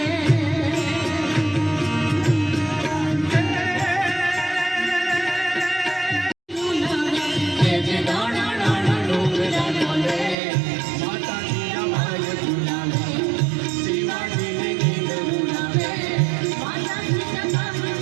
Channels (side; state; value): left; drops out; at 10.4 s